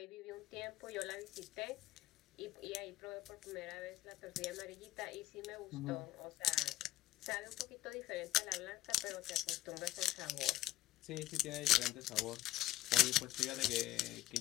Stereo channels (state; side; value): quieter; right; 16.0 dB